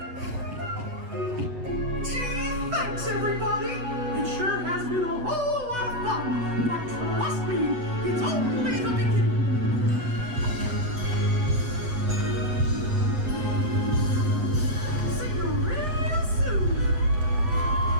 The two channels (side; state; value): left; late; 8.1 ms